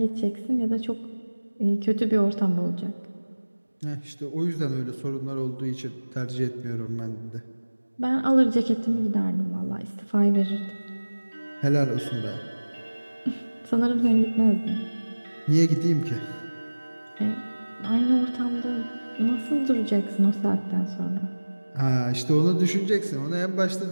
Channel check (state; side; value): inverted; both; correlation -1.00